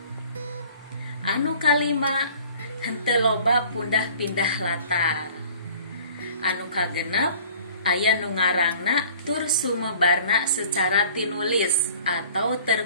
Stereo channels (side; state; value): both; inverted; correlation -0.49